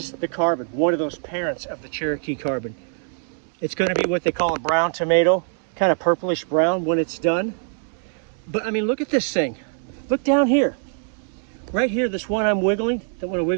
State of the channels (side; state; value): left; silent; 58 dB below the other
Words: the carbon, one of those parents of the Cherokee carbon. It's going to be what they call a brown tomato, kind of purplish brown when it's done. But I mean, look at this thing. Look down here. Right here, this one I'm wiggling, don't want to